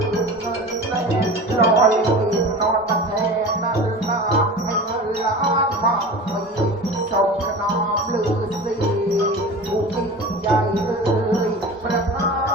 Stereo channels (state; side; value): normal; both; correlation 0.34